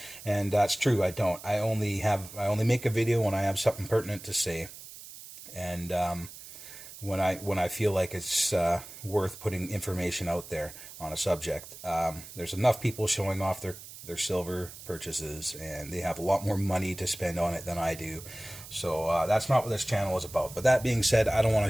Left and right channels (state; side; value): noise; right; hiss, 15 dB below the sound